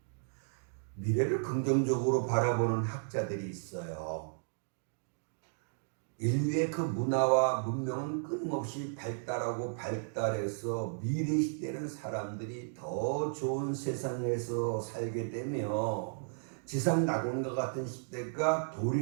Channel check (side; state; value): left; silent; digital silence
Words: 미래를 긍정적으로 바라보는 학자들이 있어요. 인류의 그 문화와 문명은 끊임없이 발달하고 발달해서 미래 시대는 사람들이 더 좋은 세상에서 살게 되며 지상 낙원과 같은 시대가